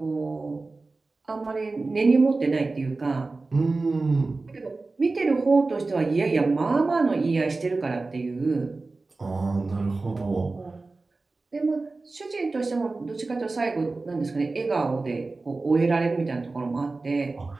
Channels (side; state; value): left; quieter; 3.5 dB